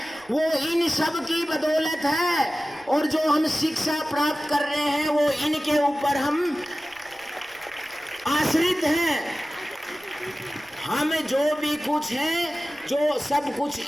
वो इन सब की बदौलत है। और जो हम शिक्षा प्राप्त कर रहे हैं वो इनके ऊपर हम आश्रित हैं। हम जो भी कुछ हैं, जो सब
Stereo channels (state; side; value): noise; right; rumble, 30 dB below the sound